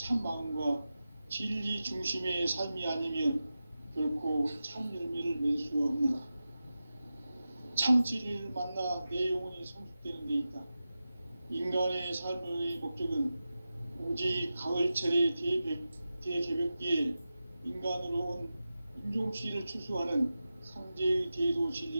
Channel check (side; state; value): both; inverted; correlation -0.93